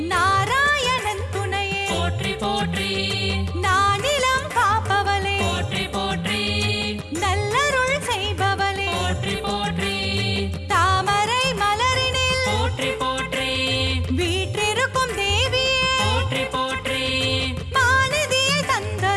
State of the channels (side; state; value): both; identical; correlation 1.00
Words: நாராயணன் துணையே போற்றி போற்றி, நானிலம் காப்பவளே போற்றி போற்றி, நல்லருள் செய்பவளே போற்றி போற்றி, தாமரை மலரினில் போற்றி போற்றி, வீற்றிருக்கும் தேவியே போற்றி போற்றி, மாநிதியை